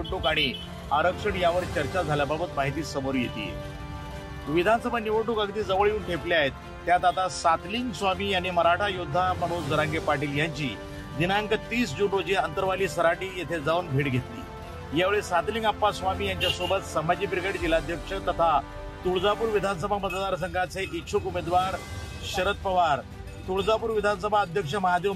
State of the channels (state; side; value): identical; both; correlation 1.00